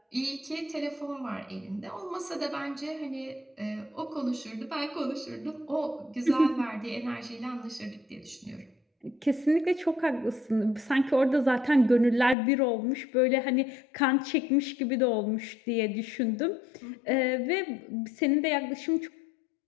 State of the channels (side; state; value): right; drops out; at 12.4 s